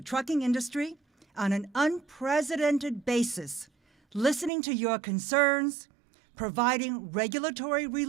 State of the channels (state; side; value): drops out; left; at 4.5 s